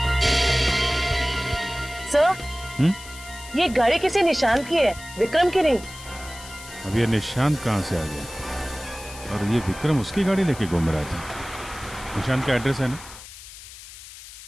सर, ये गाड़ी किसी निशान की है, विक्रम की नहीं। अब ये निशान कहाँ से आ गया? और ये विक्रम उसकी गाड़ी लेके घूम रहा था। निशान का एड्रेस है ना?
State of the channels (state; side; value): noise; left; hiss, 16 dB below the sound